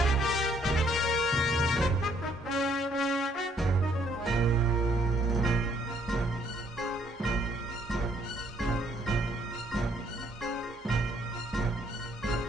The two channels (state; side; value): normal; both; correlation 0.67